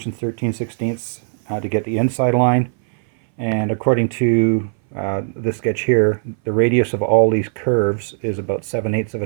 13/16 to get the inside line, and according to this sketch here, the radius of all these curves is about 7/8 of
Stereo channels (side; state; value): left; silent; 62 dB below the other